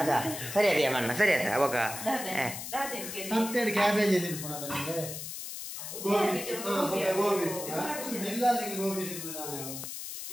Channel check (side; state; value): left; noise; hiss, 8 dB below the sound